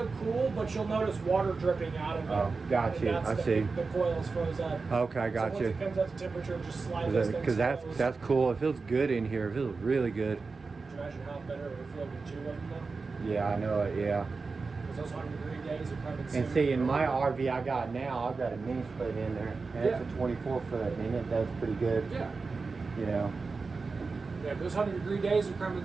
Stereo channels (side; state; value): left; quieter; 4.3 dB